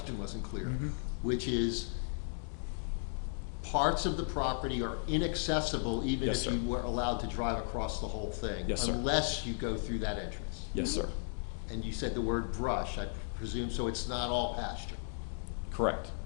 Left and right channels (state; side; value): silent; right; digital silence